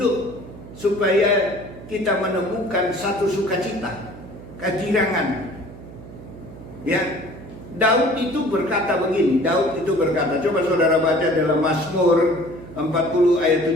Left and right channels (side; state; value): right; noise; hum, 16 dB below the sound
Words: supaya kita menemukan satu sukacita, kegirangan. Ya, Daud itu berkata begini, coba saudara baca dalam Mazmur 40